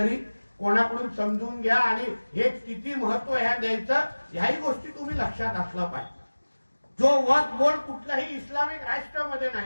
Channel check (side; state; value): both; inverted; correlation -1.00